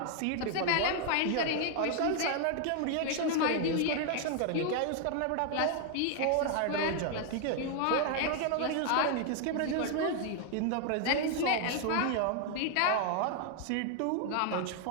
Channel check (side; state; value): both; different; correlation 0.00